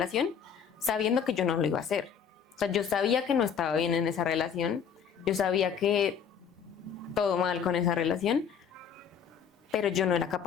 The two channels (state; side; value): quieter; right; 7.4 dB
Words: sabiendo que yo no lo iba a hacer. O sea, yo sabía que no estaba bien en esa relación, yo sabía que todo mal con esa relación, pero yo no era